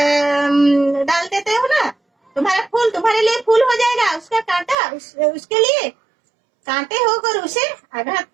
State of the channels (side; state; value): left; drops out; at 4.8 s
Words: डाल देते हो ना, तुम्हारा फूल तुम्हारे लिए फूल हो जाएगा, उसका कांटा उसके लिए कांटे होकर उसे आघात